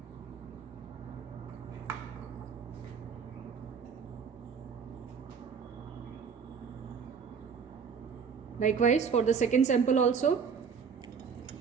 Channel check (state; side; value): quieter; left; 6.3 dB